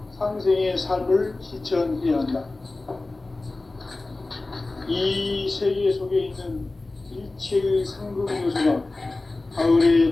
상생의 삶을 실천해야 한다. 이 세계 속에 있는 일체의 상급 요소가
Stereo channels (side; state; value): right; quieter; 3.1 dB